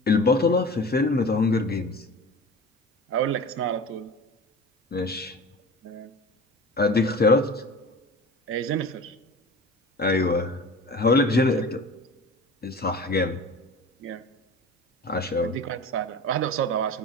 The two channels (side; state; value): both; normal; correlation 0.37